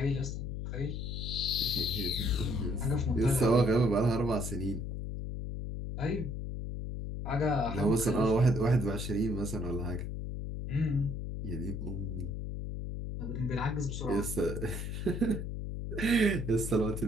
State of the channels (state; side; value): noise; left; hum, 5 dB below the sound